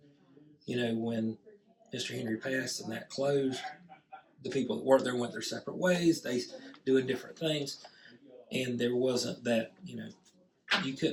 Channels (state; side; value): identical; both; correlation 1.00